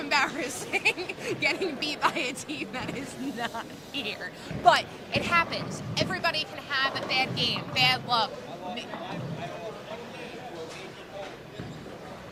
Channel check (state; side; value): identical; both; correlation 1.00